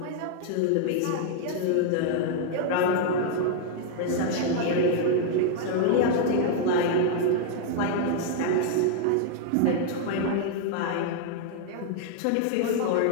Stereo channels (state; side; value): different; both; correlation 0.00